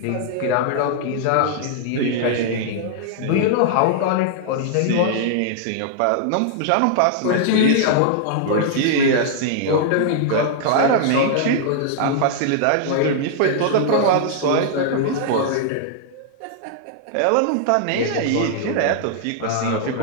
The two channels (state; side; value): different; both; correlation -0.01